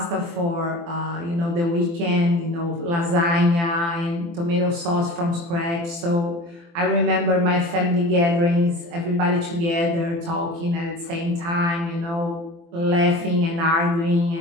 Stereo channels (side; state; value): left; late; 24 ms